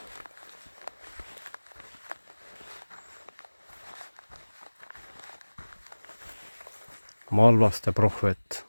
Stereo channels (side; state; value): both; inverted; correlation -1.00